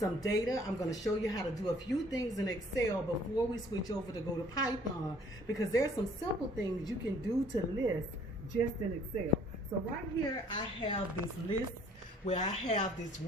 data. I'm going to show you how to do a few things in Excel before we switch over to go to Python, because there's some simple things you can do to lists just in Excel. So right here I have this list where I have this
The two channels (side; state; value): both; normal; correlation 0.57